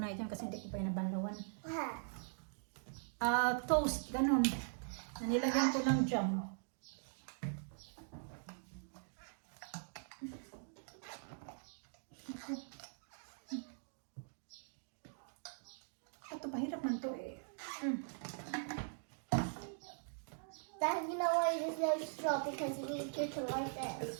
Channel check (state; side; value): silent; left; digital silence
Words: dyan kasi hindi ko pa yung nabanlawan. Toast, ganun. Nilagyan ko ng jam. Ito, pahirap man to eh. Dad, you know why there's no straw? Because you need to do it like